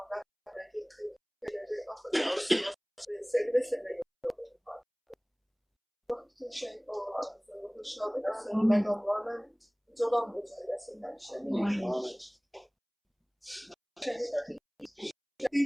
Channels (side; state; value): both; identical; correlation 1.00